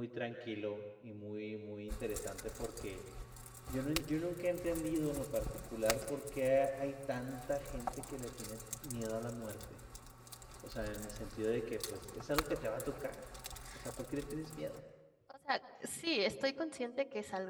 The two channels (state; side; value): identical; both; correlation 1.00